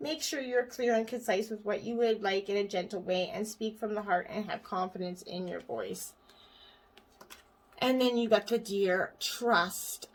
Make sure you're clear and concise with what you would like in a gentle way, and speak from the heart and have confidence in your voice. And then you got the deer, trust.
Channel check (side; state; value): both; identical; correlation 1.00